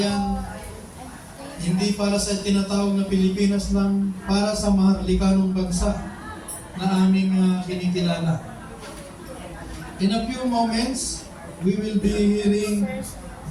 hindi para sa tinatawag na Pilipinas lang, para sa mahalikanong bansa na aming kinikilala. In a few moments, we will be hearing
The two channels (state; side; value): identical; both; correlation 1.00